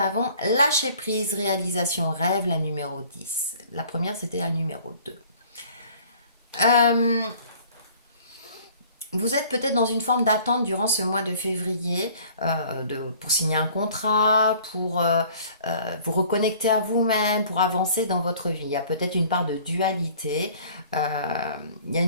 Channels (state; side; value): inverted; both; correlation -0.53